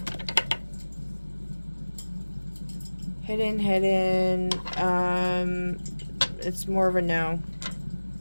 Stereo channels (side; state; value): both; inverted; correlation -1.00